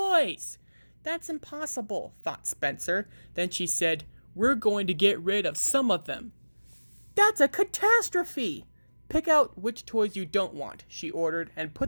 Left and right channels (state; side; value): inverted; both; correlation -1.00